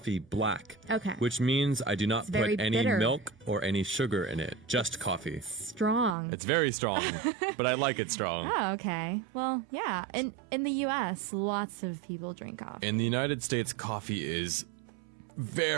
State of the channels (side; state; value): left; drops out; at 6.2 s